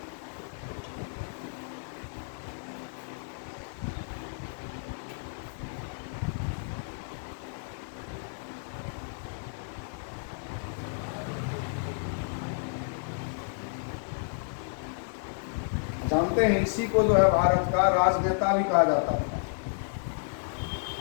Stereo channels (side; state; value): right; silent; digital silence